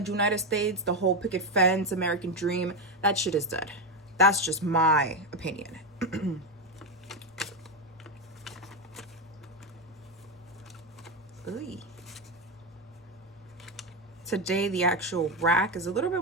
States, the whole picket fence, American dream, that shit is dead. That's just my opinion. Today the actual rack is a little bit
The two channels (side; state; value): both; normal; correlation 0.10